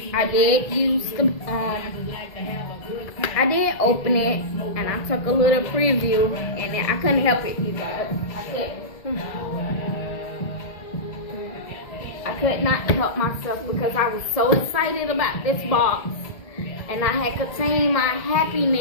I did use the I did open it and I took a little preview, and I couldn't help it, you guys. I could not help myself because I was so excited about this box, and I had contained my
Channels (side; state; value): right; late; 1.7 ms